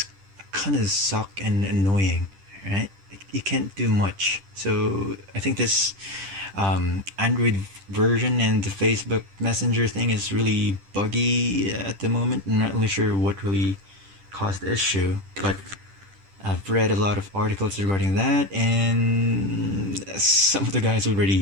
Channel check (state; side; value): late; left; 10 ms